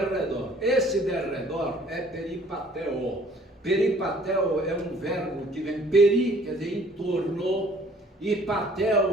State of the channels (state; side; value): normal; both; correlation 0.56